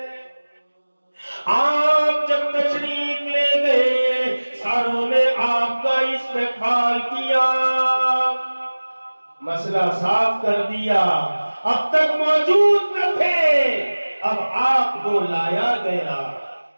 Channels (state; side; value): inverted; both; correlation -1.00